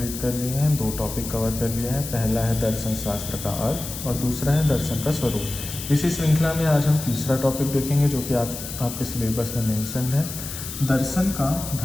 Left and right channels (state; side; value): noise; left; hiss, 9 dB below the sound